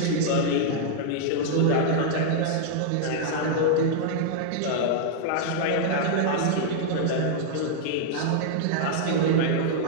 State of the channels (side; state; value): both; different; correlation -0.01